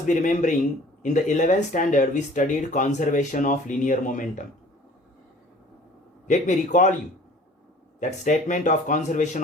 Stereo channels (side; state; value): both; normal; correlation 0.49